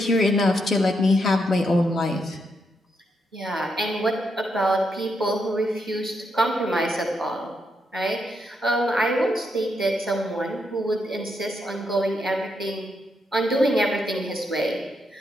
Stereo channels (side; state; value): both; normal; correlation 0.80